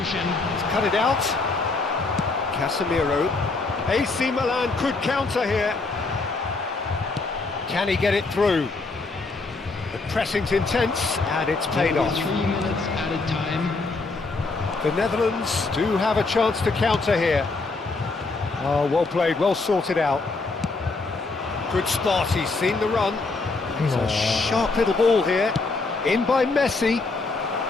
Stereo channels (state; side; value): quieter; right; 3.7 dB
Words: He's cut it out. Casemiro. AC Milan could counter here. Can he get it through? The pressing's intense, and it's paid off. 3 minutes added time. The Netherlands do have a chance to counter here. Oh, well played, well sorted out. Good spot, he's seen the run. It's a sharp little ball here. In by Messi.